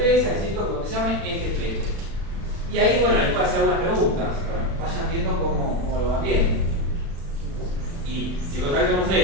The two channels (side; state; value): left; late; 36 ms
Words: necesito que te llamen este flete. Y ahí, bueno, les puedo hacer algunas preguntas. Bueno, vayan viendo cómo lo van viendo. Y si contactan un